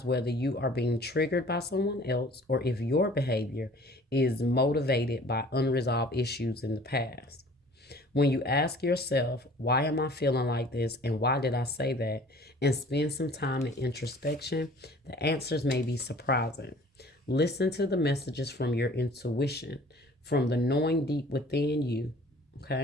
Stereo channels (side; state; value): both; normal; correlation 0.50